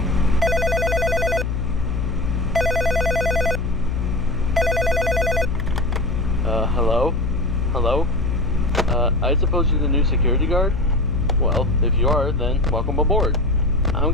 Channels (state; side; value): noise; left; hum, 2 dB below the sound